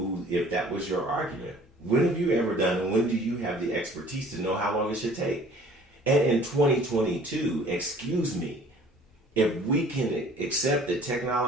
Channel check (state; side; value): normal; both; correlation 0.52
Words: if that was your argument, when have you ever done, and when do you have the expertise to know how long it should take? And in 2022, excuse me, if we can accept that